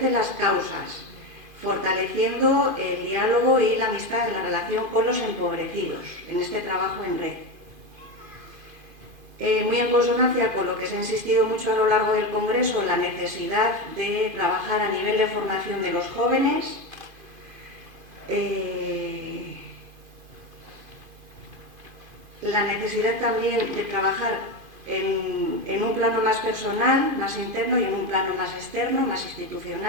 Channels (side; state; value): left; late; 2.5 ms